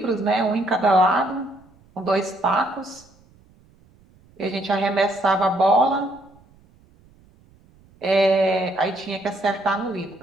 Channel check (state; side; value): noise; right; rumble, 30 dB below the sound